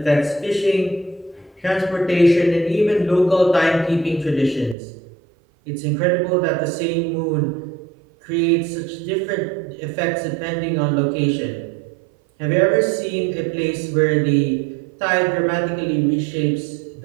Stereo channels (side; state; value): left; drops out; at 4.8 s